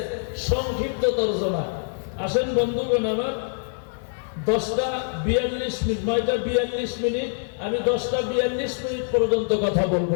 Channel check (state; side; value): silent; right; digital silence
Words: সংক্ষিপ্ত তরজমা। আসেন বন্ধুগণ আমার, 10:42 মিনিট, 9:42 মিনিট, আমি 10:42 মিনিট পর্যন্ত কথা